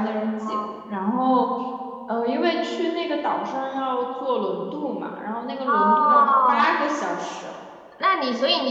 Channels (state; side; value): identical; both; correlation 1.00